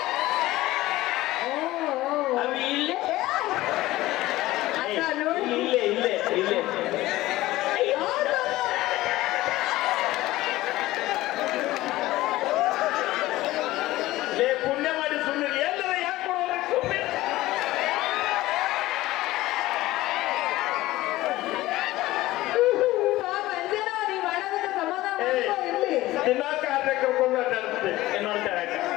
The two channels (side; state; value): right; quieter; 17.2 dB